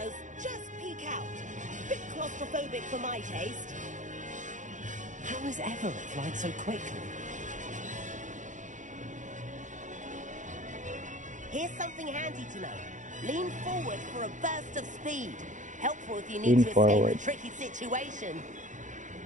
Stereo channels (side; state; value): left; late; 0.36 ms